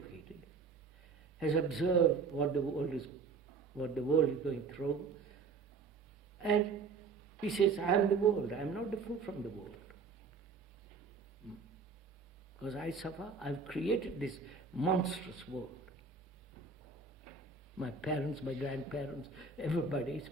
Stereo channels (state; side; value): quieter; left; 4.8 dB